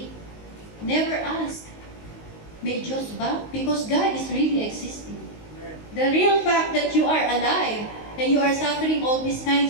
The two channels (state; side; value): late; right; 19 ms